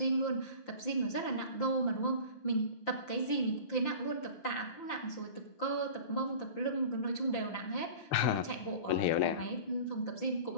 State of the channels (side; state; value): right; late; 5.8 ms